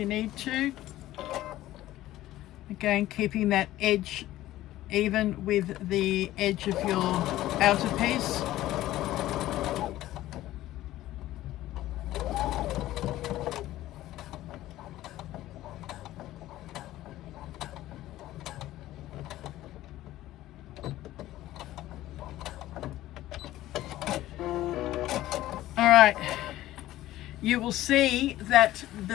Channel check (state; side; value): quieter; right; 15.1 dB